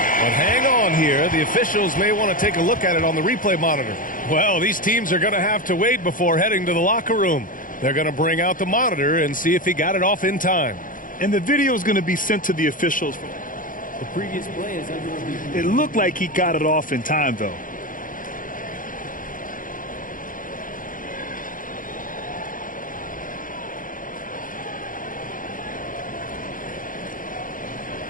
But hang on here. The officials may want to take a look at it on the replay monitor. Well, these teams are going to have to wait before heading to the locker room. They're going to bring out the monitor and see if he got it off in time. And the video is going to be sent to the officials. The previous play is under review. It looked like he got it off in time, though.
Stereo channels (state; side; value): late; right; 0.39 ms